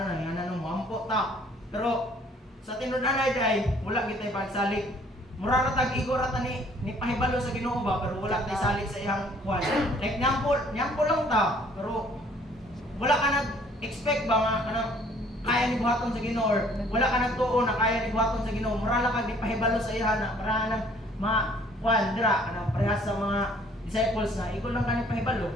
na ngana no moampo ta pero sa tinud-anay day wala gitay pagsalig mura ra tag igor ata ni pahibalo sa Ginoo ba pero wala tay salig sa iyang kuan like nyampo lang ta pero wala ka nag-expect ba nga kanang kaya ni buhaton sa Ginoo or wala ka nagtuo na kaya ni buhaton sa Ginoo mura lang kag di pahibalo sa iya na para nang kuan dira kanang parehas sa mga disciples na ikaw lang kani pahibalo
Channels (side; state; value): both; normal; correlation 0.58